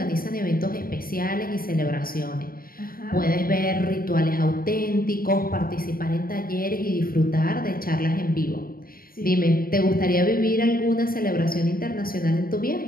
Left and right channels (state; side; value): late; right; 0.42 ms